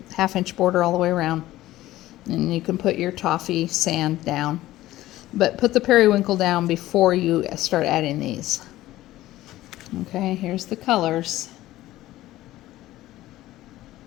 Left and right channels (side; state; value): right; quieter; 15.7 dB